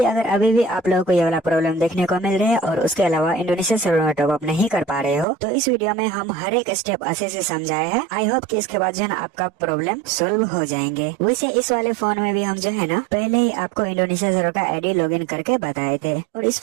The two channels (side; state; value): left; drops out; at 5.2 s